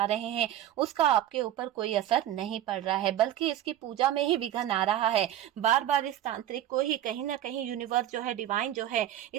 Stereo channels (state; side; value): quieter; left; 12.3 dB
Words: रहे हैं, उसका आपके ऊपर कोई असर नहीं पड़ रहा है, बल्कि इसकी पूजा में ही विघ्न आ रहा है। बार बार इस तांत्रिक को ही कहीं ना कहीं यूनिवर्स जो है, डिवाइन जो है,